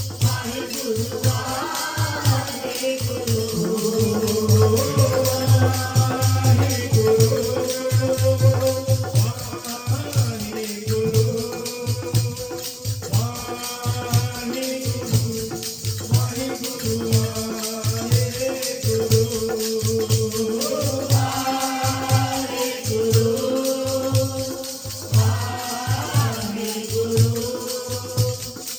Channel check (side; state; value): both; identical; correlation 1.00